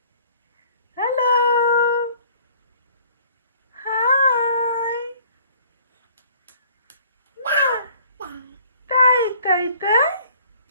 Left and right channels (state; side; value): inverted; both; correlation -0.56